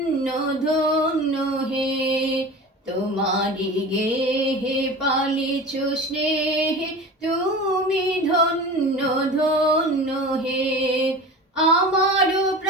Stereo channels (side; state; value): both; normal; correlation 0.34